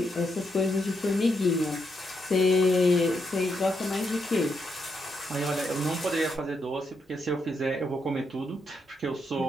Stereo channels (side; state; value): both; normal; correlation 0.80